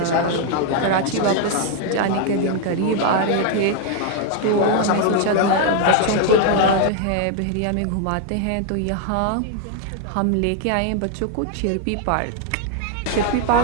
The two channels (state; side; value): different; both; correlation 0.00